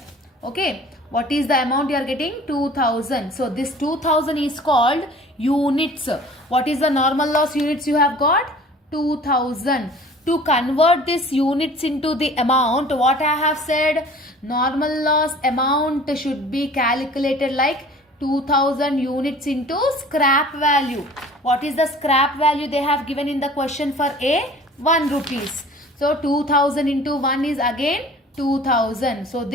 Okay. What is the amount you are getting? 2,000. So this 2,000 is called units. What is the normal loss units you have got? 2,000. To convert this units into the amount, what I have said, normal loss amount should be calculated like 2,000 units into scrap value. What is the scrap value they have given in the question for A? 1 rupees. So 2,000 into 1 is again 2,000. So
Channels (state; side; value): normal; both; correlation 0.47